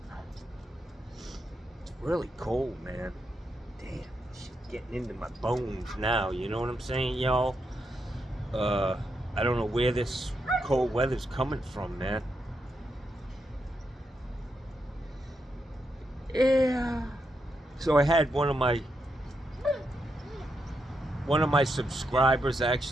It's really cold, man. Damn, shit getting into my bones now, you know what I'm saying, y'all? I don't know where this cold weather's coming from, man. Yeah. So I had one of my subscribers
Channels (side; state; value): both; normal; correlation 0.83